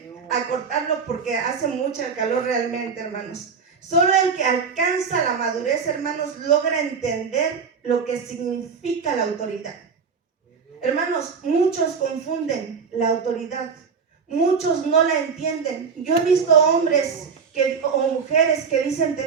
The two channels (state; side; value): quieter; left; 5.7 dB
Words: acortarlo porque hace mucha calor realmente, hermanos. Solo el que alcanza la madurez, hermanos, logra entender lo que significa la autoridad. Hermanos, muchos confunden la autoridad. Muchos no la entienden. Yo he visto hombres o mujeres que dicen